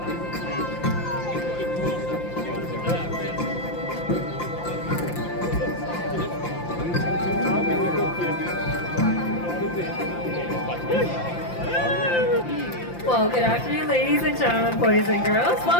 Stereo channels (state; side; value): late; right; 5.8 ms